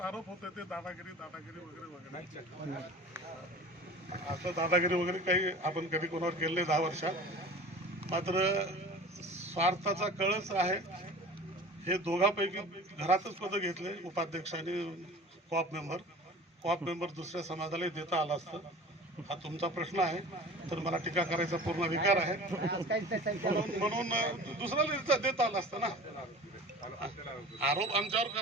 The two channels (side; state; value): both; normal; correlation 0.40